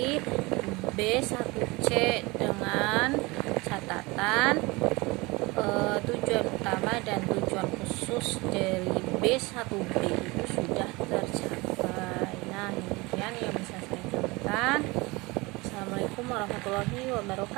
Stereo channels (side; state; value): left; quieter; 24.0 dB